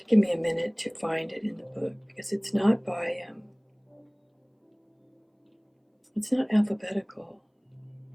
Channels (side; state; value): both; identical; correlation 1.00